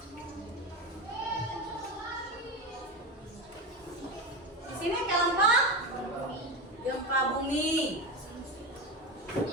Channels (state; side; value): normal; both; correlation 0.20